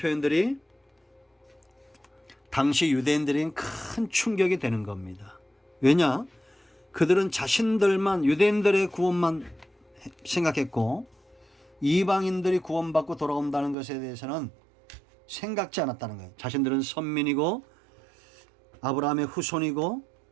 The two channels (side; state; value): left; drops out; at 13.8 s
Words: 당시 유대인들에겐 큰 충격이 되는 겁니다. 왜냐? 그들은 자신들만, 유대인들의 구원만 생각했고 이방인들이 구원받고 돌아온다는 것에 대해서는 생각지 않았다는 거예요. 자신들은 선민이고 아브라함의 후손이고